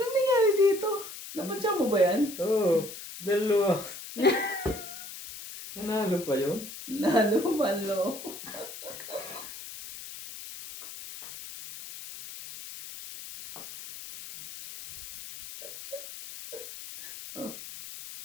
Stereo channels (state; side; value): noise; left; hiss, 12 dB below the sound